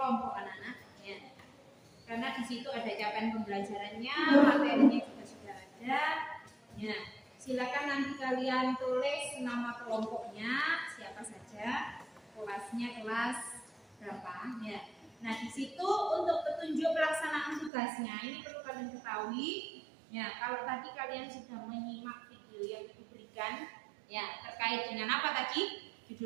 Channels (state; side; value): drops out; left; at 17.7 s